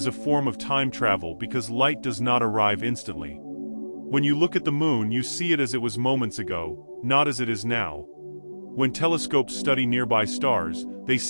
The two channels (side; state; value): both; inverted; correlation -1.00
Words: a form of time travel because light does not arrive instantly. When you look at the moon, you see it as it was moments ago, not as it is now. When telescopes study nearby stars, they